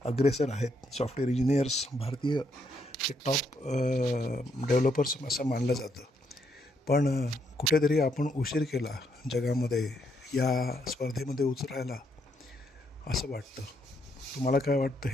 अग्रेसर आहेत. सॉफ्टवेअर इंजिनियर्स भारतीय हे टॉप डेव्हलपर्स असं मानलं जातं. पण कुठेतरी आपण उशीर केला जगामध्ये या स्पर्धेमध्ये उतरायला असं वाटतं. तुम्हाला काय वाटतं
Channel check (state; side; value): normal; both; correlation 0.75